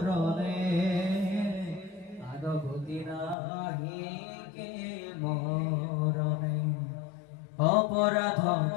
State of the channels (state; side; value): drops out; right; at 3.4 s